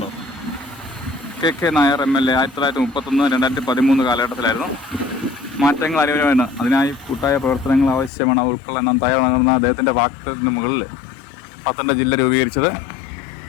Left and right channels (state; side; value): drops out; right; at 8.1 s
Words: കേട്ടോ കെ നായർ MLA. 1931-2013 കാലഘട്ടത്തിലായിരുന്നു. മാറ്റങ്ങൾ അനിവാര്യമാണ്, അതിനായി കൂട്ടായ പ്രവർത്തനങ്ങൾ ആവശ്യമാണ്, ഉൾക്കൊള്ളാൻ തയ്യാറാണെന്ന അദ്ദേഹത്തിൻ്റെ വാക്യത്തിന് മുകളിൽ പത്തനംതിട്ട ജില്ല രൂപീകരിച്ചത്.